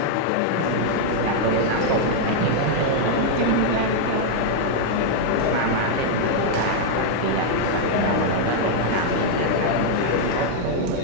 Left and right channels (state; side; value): different; both; correlation -0.01